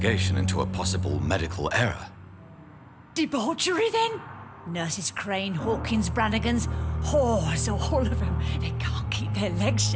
into a possible medical error. Debauchery, then? Nurses Crane, Hawkins, Brannigans, whores, all of them. They can't keep their legs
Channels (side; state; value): both; identical; correlation 1.00